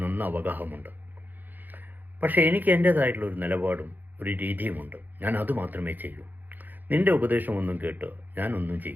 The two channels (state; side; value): late; left; 0.086 ms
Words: നന്ന അവഗാഹമുണ്ട്. പക്ഷേ എനിക്ക് എൻ്റേതായിട്ടുള്ളൊരു നിലപാടും ഒരു രീതിയുമുണ്ട്. ഞാൻ അതുമാത്രമേ ചെയ്യൂ. നിന്റെ ഉപദേശമൊന്നും കേട്ട് ഞാനൊന്നും